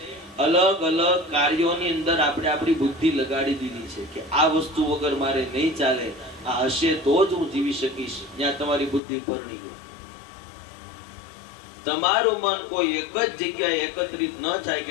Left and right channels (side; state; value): right; drops out; at 9.0 s